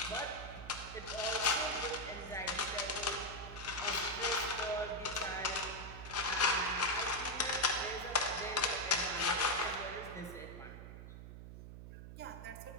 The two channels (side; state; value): right; noise; hum, 12 dB below the sound